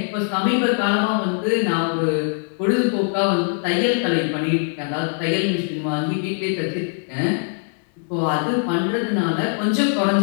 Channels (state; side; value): silent; right; 60 dB below the other